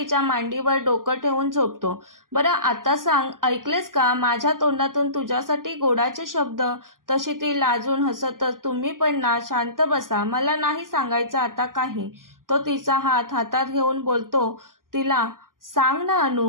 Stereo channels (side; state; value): left; late; 0.91 ms